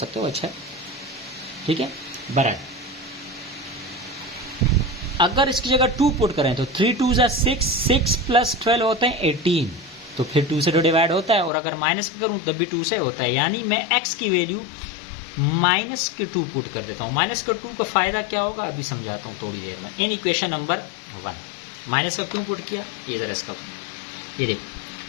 हो, अच्छा ठीक है, बराबर। अगर इसकी जगह 2 पुट करें तो 3 2 जा 6, 6 प्लस 12 होते हैं 18, तो फिर 2 से तो डिवाइड होता है, और अगर माइनस करूं तब भी 2 से होता है, यानी मैं x की वैल्यू माइनस के 2 पुट कर देता हूं। माइनस का 2 का फायदा क्या होगा अभी समझाता हूं थोड़ी देर में। इन इक्वेशन नंबर 1 माइनस का क्यों पुट किया, ये जरा इसका, ये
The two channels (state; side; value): drops out; right; at 11.5 s